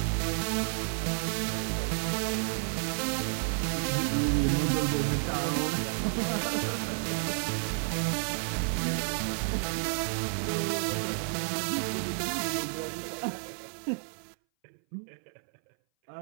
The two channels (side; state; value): left; silent; 57 dB below the other